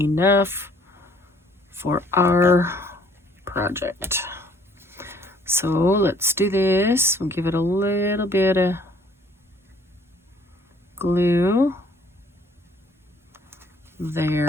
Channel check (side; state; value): both; normal; correlation 0.60